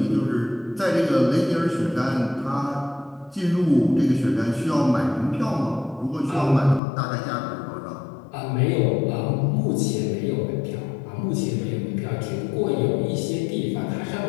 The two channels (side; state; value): right; drops out; at 6.8 s